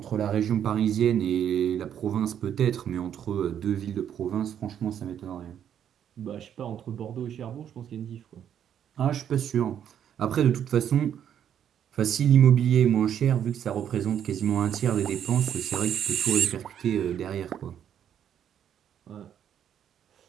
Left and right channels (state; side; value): quieter; left; 9.4 dB